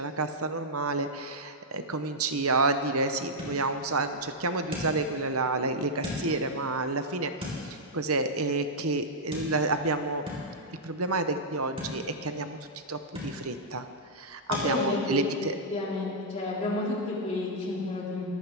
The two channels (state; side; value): normal; both; correlation -0.07